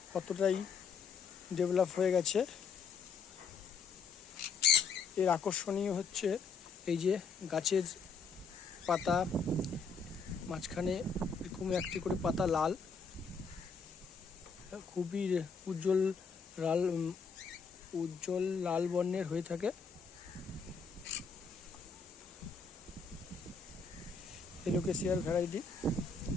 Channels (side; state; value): right; quieter; 5.2 dB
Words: কতটাই ডেভেলপ হয়ে গেছে। এর আকর্ষণীয় হচ্ছে এই যে গাছের পাতা মাঝখানে এরকম একটি করে পাতা লাল, খুবই উজ্জ্বল লাল বর্ণের হয়ে থাকে। এলোকেসিয়ার ভ্যারাইটি